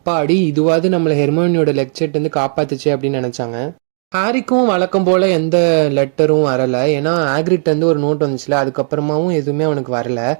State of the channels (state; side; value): silent; left; digital silence